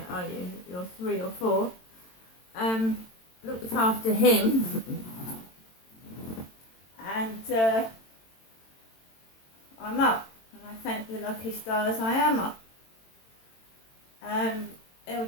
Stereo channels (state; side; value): late; right; 22 ms